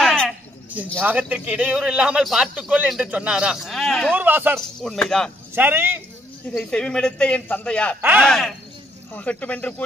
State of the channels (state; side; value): normal; both; correlation 0.70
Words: என் யாகத்திற்கு இடையூறு இல்லாமல் பார்த்துக்கொள் என்று சொன்னாரா. தூர்வாசர் உண்மைதான். சரி, இதை செவிமெடுத்த என் தந்தையார் ஆகட்டும் என்று